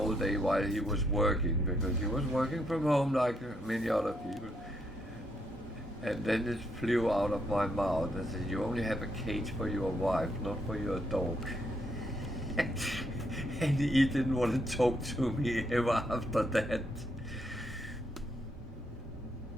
day while he was working, because he was working from home like many other people. And then it flew out of my mouth and said, "You only have a cage for your wife, not for your dog." And he didn't want to talk to me ever after that.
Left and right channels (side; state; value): both; normal; correlation 0.76